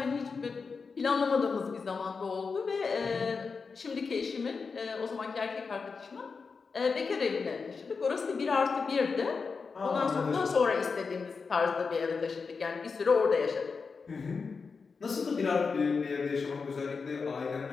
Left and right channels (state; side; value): quieter; right; 5.0 dB